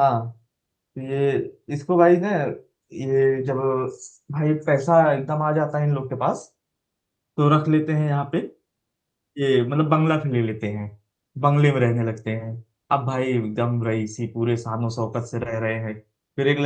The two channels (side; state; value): both; identical; correlation 1.00